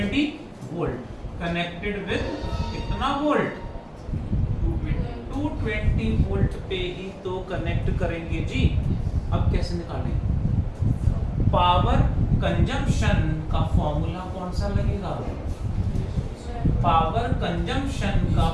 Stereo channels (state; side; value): identical; both; correlation 1.00